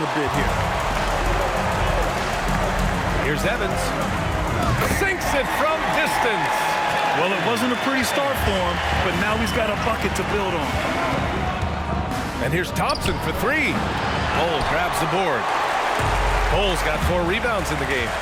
a bit here. Here's Evans. Sinks it from distance. Well, it wasn't a pretty start for him, but now he's got a bucket to build on. And here's Thompson for 3. Cole grabs the board. Cole's got 4 rebounds in the game.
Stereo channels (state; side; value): identical; both; correlation 1.00